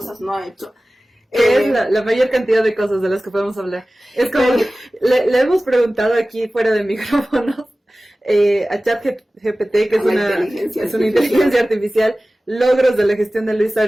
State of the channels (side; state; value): both; normal; correlation 0.97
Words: no ha hecho. Es la mayor cantidad de cosas de las que podemos hablar. Es como que le hemos preguntado aquí fuera de micrófonos a ChatGPT, que es una inteligencia artificial, logros de la gestión de Luis